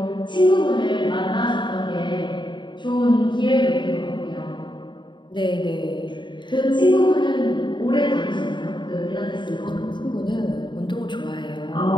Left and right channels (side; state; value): right; late; 0.23 ms